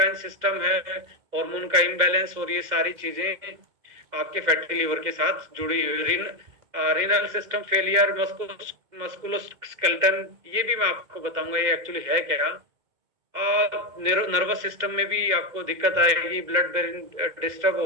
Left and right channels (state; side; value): late; left; 2.2 ms